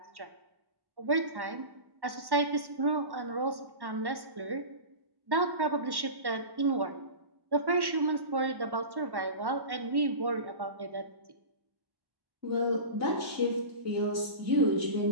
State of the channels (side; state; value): left; late; 1.1 ms